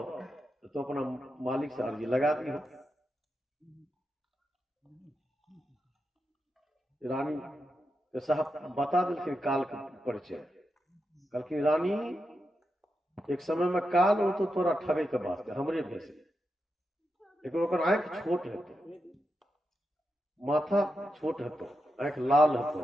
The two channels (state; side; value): normal; both; correlation 0.87